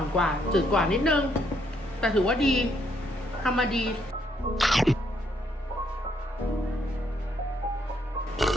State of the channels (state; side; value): normal; both; correlation 0.72